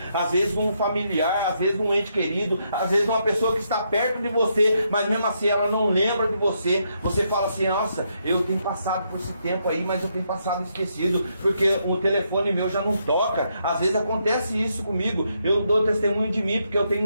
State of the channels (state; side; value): inverted; both; correlation -0.78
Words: Às vezes um familiar, às vezes um ente querido, às vezes uma pessoa que está perto de você, mas mesmo assim ela não lembra de você. Você fala assim, nossa, eu tenho passado por esse tempo aí, mas eu tenho passado esquecido, porque o telefone meu já não toca. Às vezes acontece isso comigo. Eu dou testemunho de mim, porque eu